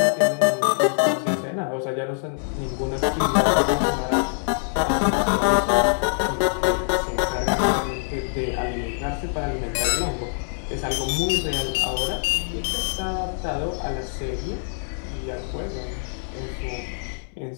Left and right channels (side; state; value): right; silent; digital silence